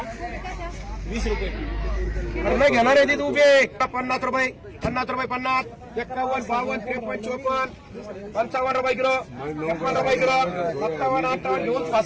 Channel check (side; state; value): both; identical; correlation 1.00